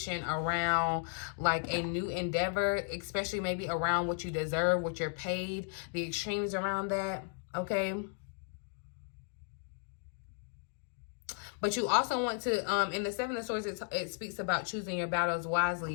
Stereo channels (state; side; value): silent; right; 55 dB below the other